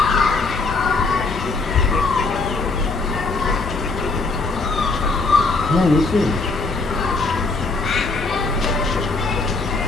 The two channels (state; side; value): quieter; right; 3.8 dB